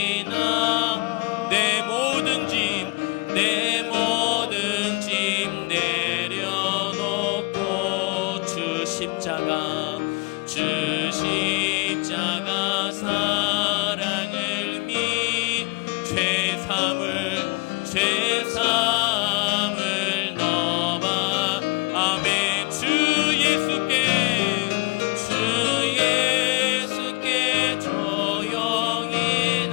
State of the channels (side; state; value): right; quieter; 27.7 dB